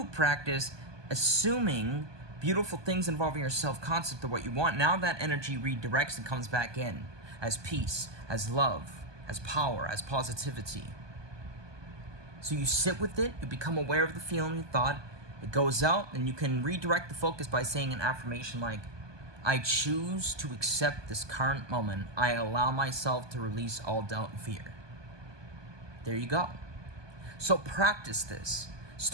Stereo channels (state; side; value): late; left; 1.2 ms